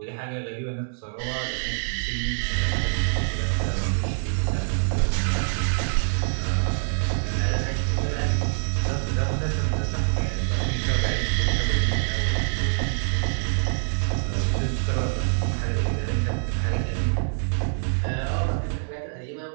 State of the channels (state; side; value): silent; left; digital silence